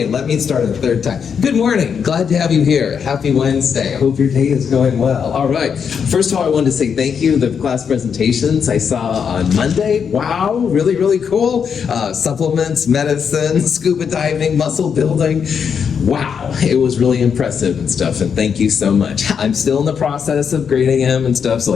let me start a third time. Good morning. Glad to have you here. Happy Wednesday. I hope your day is going well. All right. First of all, I wanted to say thank you. The class presentations I saw on Monday. Wow. Really, really cool. Supplements, medicine, scuba diving, muscle building. Wow. It was really impressive and stuff, and thank you so much. I'm still in the process of grading them and stuff, so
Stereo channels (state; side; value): quieter; right; 6.9 dB